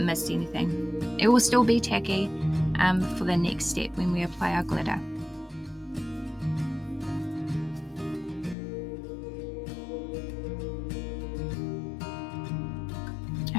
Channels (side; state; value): right; drops out; at 8.6 s